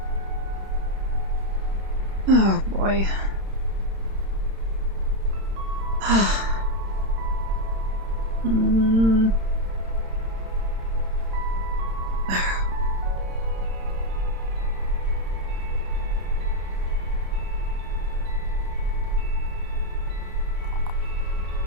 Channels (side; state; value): left; late; 31 ms